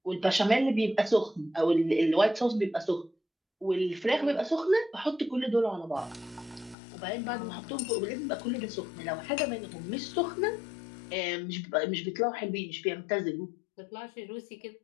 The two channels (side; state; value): right; drops out; at 6.8 s